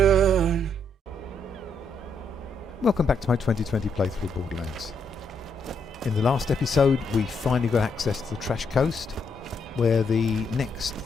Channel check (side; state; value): both; normal; correlation 0.76